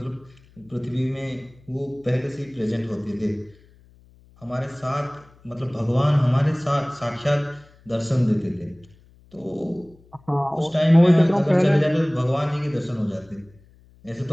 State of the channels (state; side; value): noise; left; hum, 28 dB below the sound